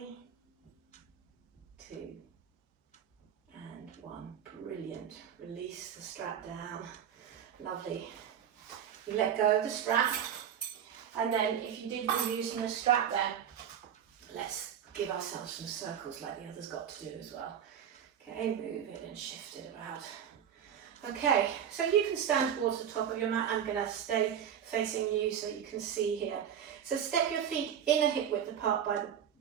2, and 1. Brilliant. Release the strap down. Lovely. You let go of the strap. And then if you did be using a strap there, let's give ourselves some circles like the others got to do as well. Okay, move it and shift it about. Okay, so you can stand towards the top of your mat. I'm going to stay facing you so you can see here. So step your feet in a hip width apart by the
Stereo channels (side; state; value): left; quieter; 8.9 dB